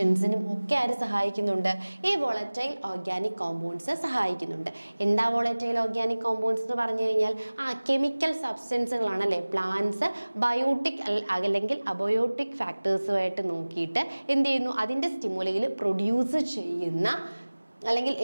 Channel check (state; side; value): inverted; both; correlation -1.00